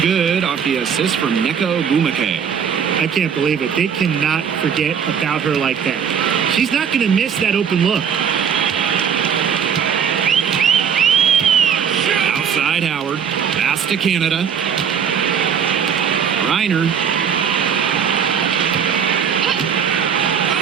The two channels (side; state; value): left; quieter; 7.5 dB